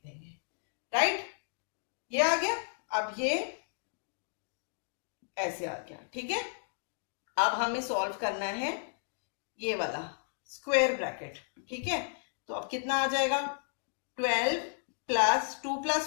देंगे, राइट? ये आ गया। अब ये ऐसे आ गया, ठीक है? अब हमें सॉल्व करना है ये वाला स्क्वायर ब्रैकेट, ठीक है? तो अब कितना आ जाएगा? 12 प्लस 2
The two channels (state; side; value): silent; right; digital silence